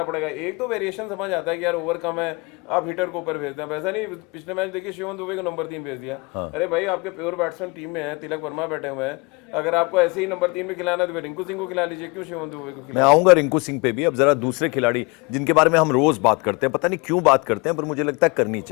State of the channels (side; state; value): right; quieter; 27.9 dB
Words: पड़ेगा। एक तो वेरिएशन समझ आता है कि यार ओवर कम है, आप हिटर को ऊपर भेजते हैं, वैसा नहीं। पिछले मैच देखिए शिवम दुबे को नंबर 3 भेज दिया। अरे भाई आपके प्योर बैट्समैन टीम में है, तिलक वर्मा बैठे हुए हैं, अगर आपको ऐसे ही नंबर 3 में खिलाना है तो रिंकू सिंह को खिला लीजिए, क्यों शिवम दुबे को? मैं आऊंगा रिंकू सिंह पे भी। अब जरा दूसरे खिलाड़ी जिनके बारे में हम रोज बात करते हैं, पता नहीं क्यों बात करते हैं, पर मुझे लगता है करनी